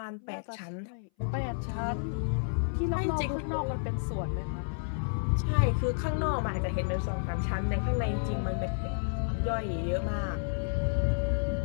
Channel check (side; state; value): right; silent; 57 dB below the other